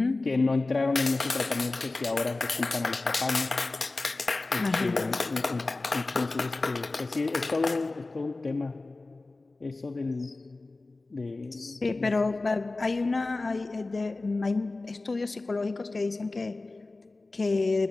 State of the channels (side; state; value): right; quieter; 3.3 dB